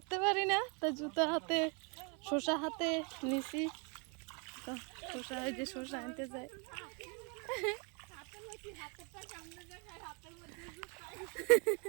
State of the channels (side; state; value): left; quieter; 35.3 dB